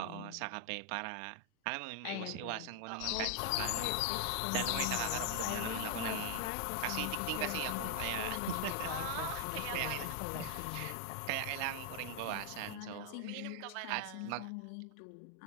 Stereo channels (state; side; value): different; both; correlation 0.00